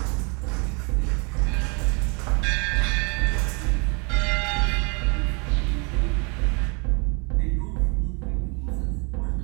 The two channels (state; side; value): quieter; left; 33.0 dB